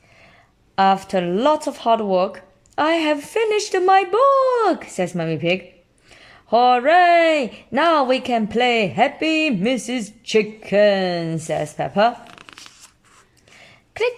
After lots of hard work, I have finished my book, says Mummy Pig. Hooray! Now we can play Happy Mrs. Chicken, says Peppa.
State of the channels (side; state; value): both; identical; correlation 1.00